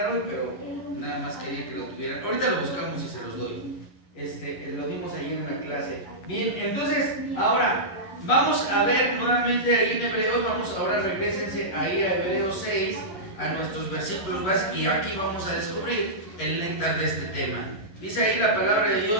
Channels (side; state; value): right; late; 11 ms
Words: hoy, pero nada más quería que lo tuvieran. Ahorita lo buscamos y se los doy. Lo dimos ahí en la clase. Bien, entonces, ahora vamos a ver nuevamente ahí en Hebreos. Ahora regrésense ahí a Hebreos 6, a nuestros versículos básicos, y aquí vamos a descubrir el néctar de este tema. Dice ahí la palabra de